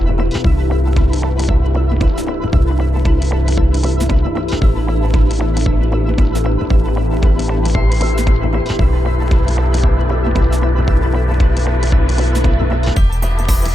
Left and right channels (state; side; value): normal; both; correlation 0.89